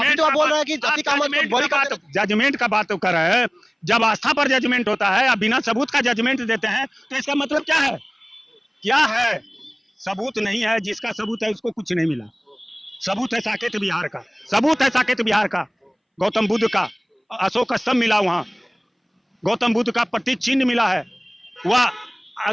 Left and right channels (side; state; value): both; identical; correlation 1.00